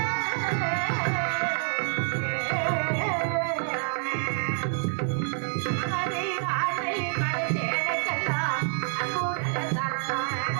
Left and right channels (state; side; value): silent; left; 60 dB below the other